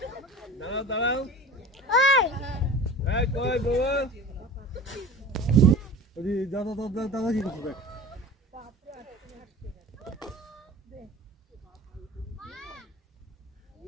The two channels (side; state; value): both; normal; correlation 0.38